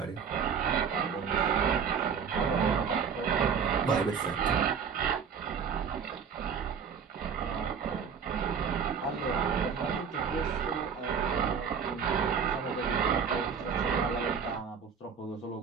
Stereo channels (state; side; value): quieter; left; 6.7 dB